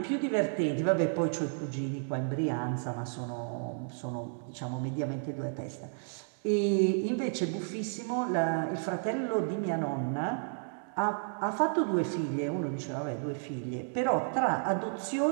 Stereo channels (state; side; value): silent; left; digital silence